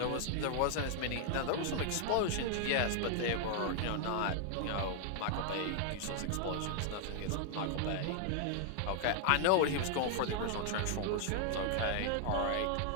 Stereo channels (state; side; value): different; both; correlation 0.00